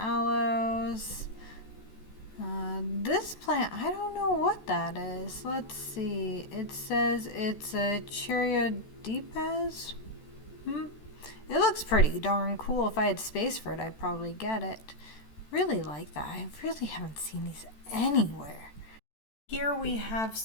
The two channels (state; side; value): late; right; 14 ms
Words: This plant, I don't know what that is. Let's see. It says it's a Cheeriodipes. It looks pretty darn cool. If I had space for it, I'd probably get it. Really like that. I really haven't seen these anywhere. Here we have